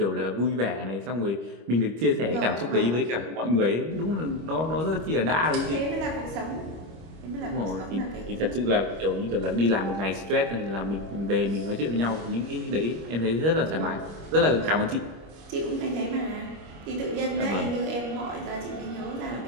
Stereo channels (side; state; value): left; late; 25 ms